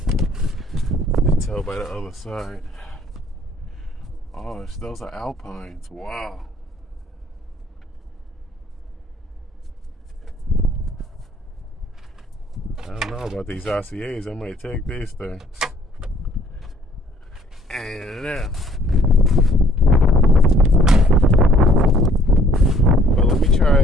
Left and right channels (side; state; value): both; normal; correlation 0.60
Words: You can tell by the other side. Oh, those are Alpines. Wow. I don't know about these RCAs. I might take these things. And but let me